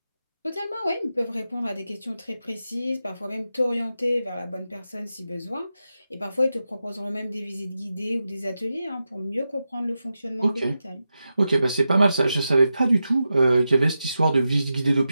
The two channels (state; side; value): inverted; both; correlation -0.90